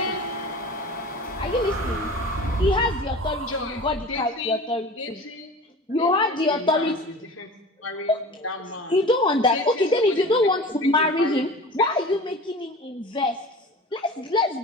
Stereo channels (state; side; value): normal; both; correlation 0.37